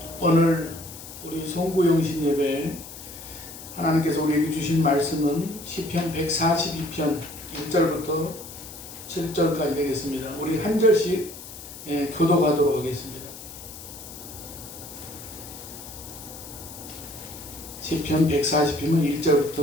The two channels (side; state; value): left; noise; hiss, 14 dB below the sound